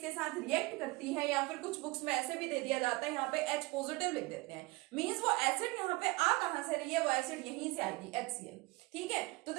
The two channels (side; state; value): left; quieter; 23.1 dB